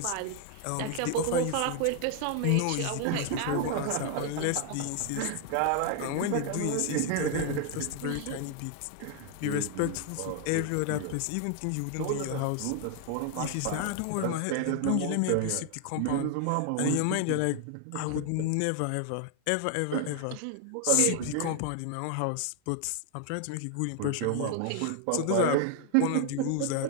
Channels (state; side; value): different; both; correlation 0.00